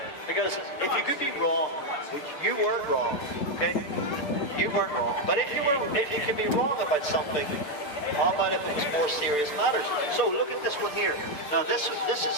Because if you could be wrong, which you weren't wrong, okay? You weren't wrong. But if you could be wrong about something, how about if it was more serious matters? So look at this one here. Now this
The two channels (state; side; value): late; right; 6.8 ms